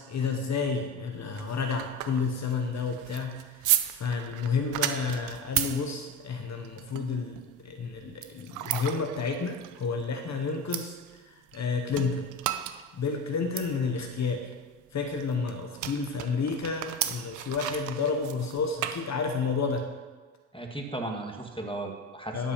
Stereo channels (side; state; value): both; normal; correlation 0.24